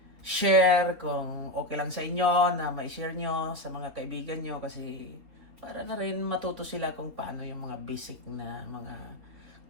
Share kung okay lang sa inyo na ma-share nyo sa mga kaibigan nyo kasi para na rin matuto sila kung paano yung mga basic na mga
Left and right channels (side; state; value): left; late; 3.7 ms